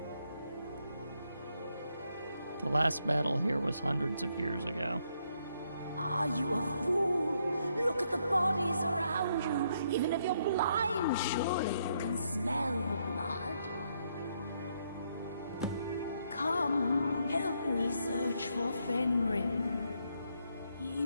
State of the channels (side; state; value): both; inverted; correlation -0.75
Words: The last battle here was hundreds of years ago. Are you a fool? Look at the bodies around you. Even if you're blind, surely you can smell the blood. Come, help me search for Fenric. He